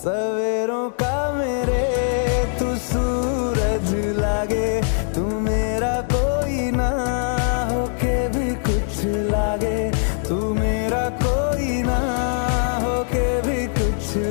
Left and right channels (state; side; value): silent; right; digital silence